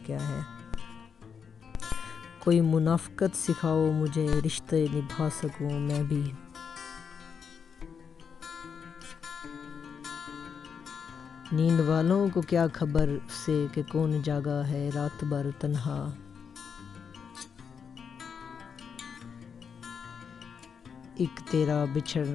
ہے۔ کوئی منافقت سکھاؤ مجھے، رشتے نبھا سکوں میں بھی۔ نیند والوں کو کیا خبر سے کہ کون جاگا ہے رات بھر تنہا۔ ایک تیرا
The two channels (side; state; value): right; quieter; 6.6 dB